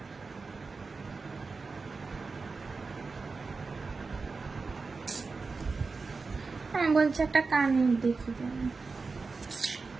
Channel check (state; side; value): quieter; left; 4.3 dB